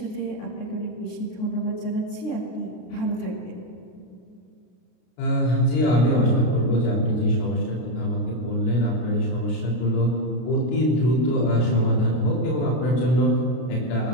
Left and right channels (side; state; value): right; late; 33 ms